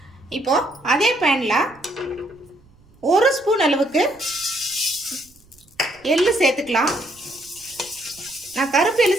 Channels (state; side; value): noise; right; rumble, 29 dB below the sound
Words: இப்போ அதே பேன்ல ஒரு ஸ்பூன் அளவுக்கு எள்ளு சேர்த்துக்கலாம். நான் கருப்பு எள்ளு